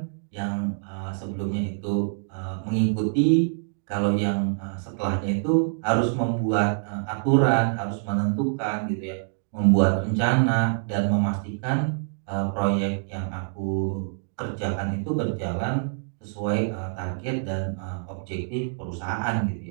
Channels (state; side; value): silent; left; digital silence